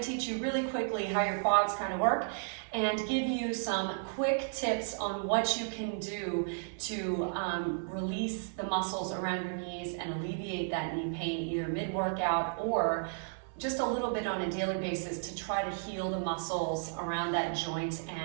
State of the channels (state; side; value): silent; left; 55 dB below the other